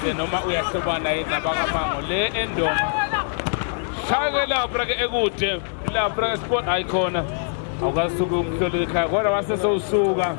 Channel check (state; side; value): silent; right; digital silence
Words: noma uyahlobana yini nabakaMango le endonga shaya-ke lapha-ke ekude lapha-ke sport ayikhona awukasuke umhloleli ekhaya kodwa wasesewusuka